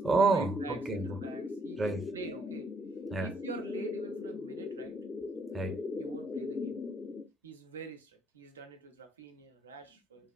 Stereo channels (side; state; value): both; normal; correlation 0.70